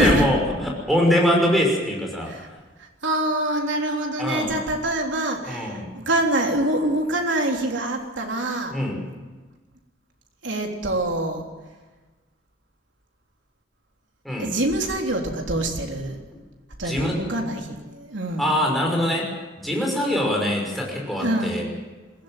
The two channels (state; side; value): normal; both; correlation 0.43